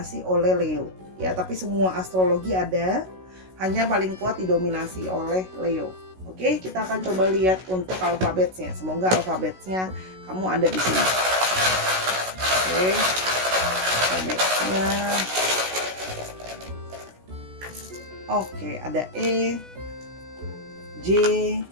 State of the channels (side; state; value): left; late; 16 ms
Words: oleh Leo. Ya, tapi semua astrologi ada, hanya paling kuat didominasi oleh Leo. Oke, kita akan coba lihat untuk alfabetnya. Semoga alfabetnya kamu ada di sini. Oke, alfabetnya. Oke, ada E, J,